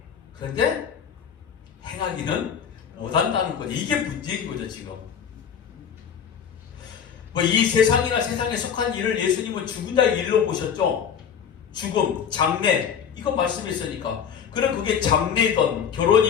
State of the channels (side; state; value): right; quieter; 7.8 dB